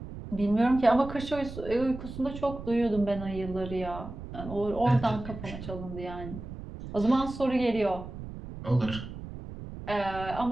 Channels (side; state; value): right; noise; rumble, 11 dB below the sound